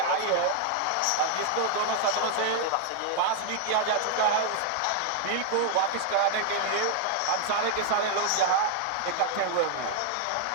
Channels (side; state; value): both; different; correlation 0.00